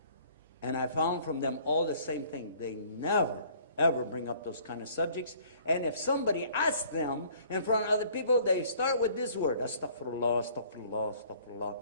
And I found from them all the same thing. They never, ever bring up those kind of subjects. And if somebody asks them in front of other people, they start with this word, astaghfirullah, astaghfirullah, astaghfirullah.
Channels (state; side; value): inverted; both; correlation -0.56